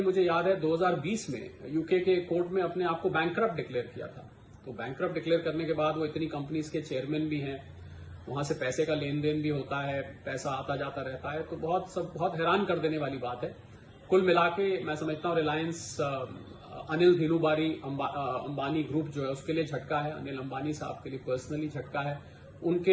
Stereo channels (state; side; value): identical; both; correlation 1.00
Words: मुझे याद है 2020 में यूके के कोर्ट में अपने आप को बैंकरप्ट डिक्लेयर किया था। तो बैंकरप्ट डिक्लेयर करने के बाद वो इतनी कंपनीज के चेयरमैन भी हैं, वहां से पैसे का लेन देन भी होता है, पैसा आता जाता रहता है। तो बहुत हैरान कर देने वाली बात है। कुल मिला के मैं समझता हूं रिलायंस अनिल धीरूभाई अंबानी ग्रुप जो है उसके लिए झटका है, अनिल अंबानी साहब के लिए पर्सनली झटका है,